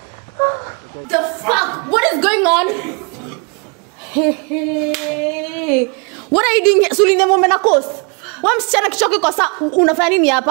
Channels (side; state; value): left; quieter; 34.7 dB